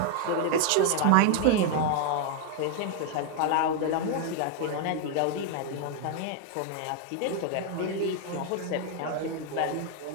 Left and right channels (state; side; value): different; both; correlation 0.00